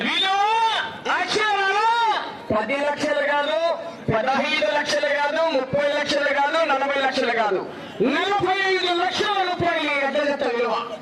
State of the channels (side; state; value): both; identical; correlation 1.00